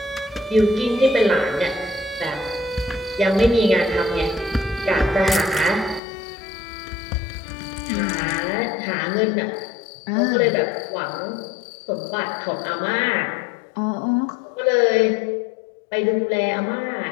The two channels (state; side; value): drops out; right; at 6.0 s